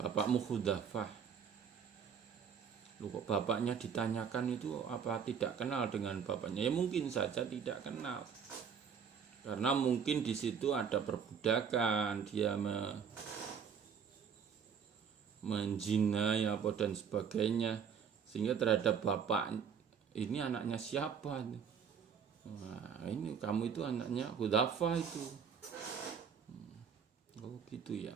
Bapakmu Khudzafah. Loh, kok bapaknya ditanyakan itu apa tidak kenal dengan bapaknya? Ya mungkin saja tidak kenal. Karena mungkin di situ ada perbudakan, dia menjinai apa dan sebagainya. Sehingga terhadap bapak ini anaknya siapa? Nah, ini kamu itu anaknya Khudzafah itu. Oh gitu ya.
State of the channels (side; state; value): left; quieter; 7.0 dB